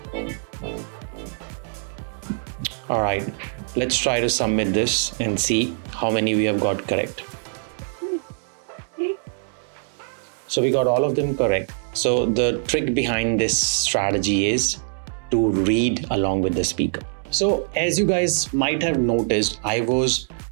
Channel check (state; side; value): silent; left; 63 dB below the other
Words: All right, let's try to submit this and see how many we have got correct. So we got all of them correct. So the trick behind this strategy is to read along with the speaker. So as you guys might have noticed, I was